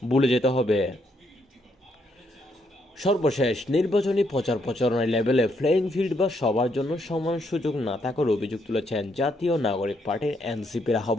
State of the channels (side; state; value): both; normal; correlation 0.75